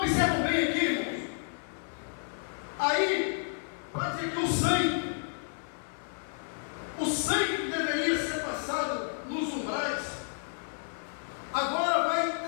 bem aqui, irmãos. Aí, vai dizer que o sangue que deveria ser passado nos umbrais, agora vai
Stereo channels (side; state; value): right; silent; 56 dB below the other